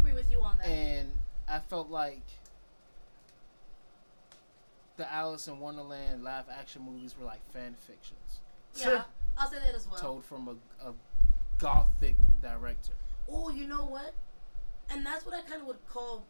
with you on that. And I felt like the Alice in Wonderland live action movies were like fan fictions. Yeah, I'll say that as well. Told from a gothic director. Oh, you know what? And that's what I kind of would call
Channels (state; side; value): inverted; both; correlation -1.00